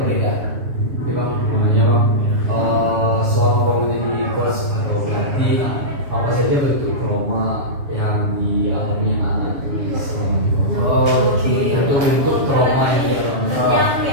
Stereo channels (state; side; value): late; left; 7.2 ms